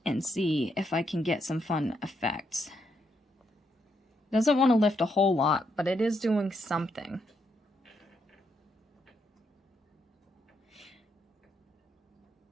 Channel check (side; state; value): both; normal; correlation 0.78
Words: and see if I can get some fun effects. Doesn't want to lift a whole lot, but it is doing something.